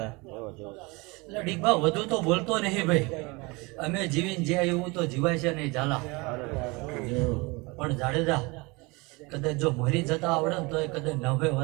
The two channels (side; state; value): left; quieter; 25.9 dB